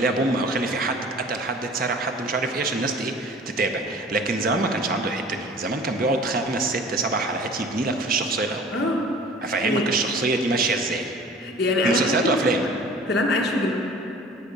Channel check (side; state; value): both; normal; correlation 0.45